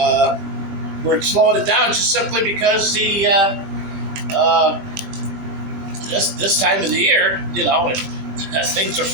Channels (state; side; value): late; left; 21 ms